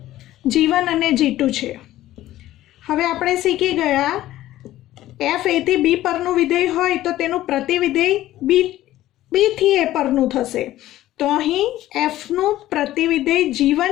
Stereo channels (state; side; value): quieter; right; 14.6 dB